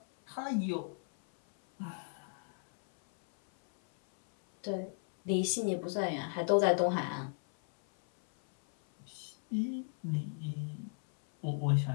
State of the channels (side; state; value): right; silent; 54 dB below the other